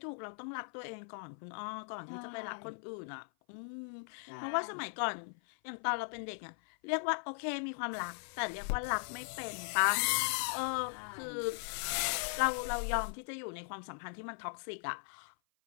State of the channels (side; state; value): right; silent; 52 dB below the other